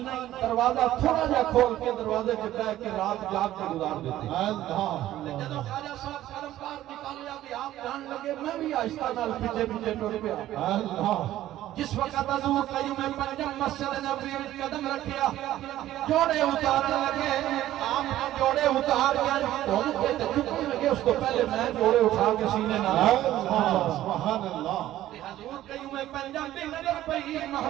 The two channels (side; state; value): left; quieter; 13.8 dB